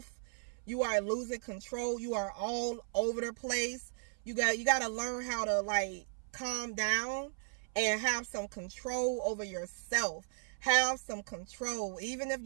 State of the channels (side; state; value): left; silent; 54 dB below the other